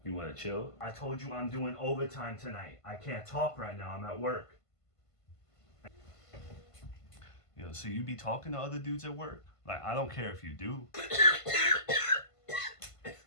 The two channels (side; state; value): right; late; 1.5 ms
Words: You wanna chill? I told you I'm doing overtime tonight. I can't talk right now, I'm at work. Yo, so you be talking to other dudes at work? Like, I don't care if you do.